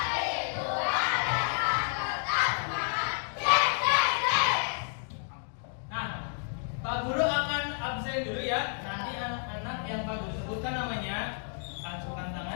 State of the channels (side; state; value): right; silent; 57 dB below the other